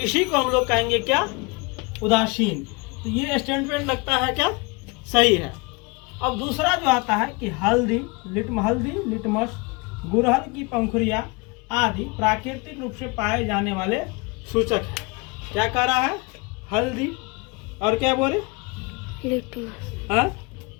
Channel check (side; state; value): right; quieter; 28.0 dB